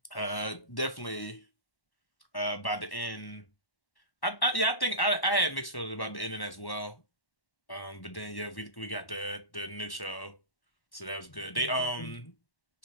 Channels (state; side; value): late; right; 1.1 ms